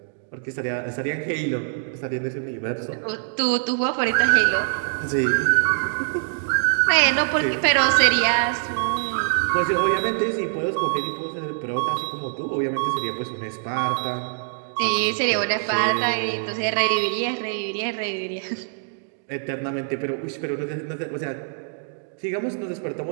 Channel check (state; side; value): silent; left; digital silence